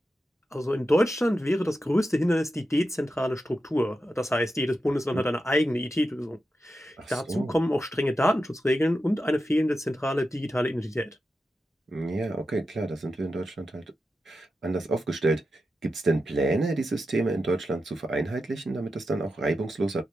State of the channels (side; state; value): both; normal; correlation 0.89